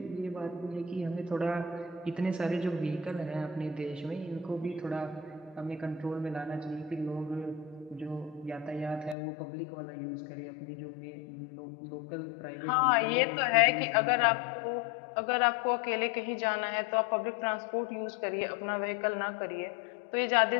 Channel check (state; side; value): drops out; right; at 9.2 s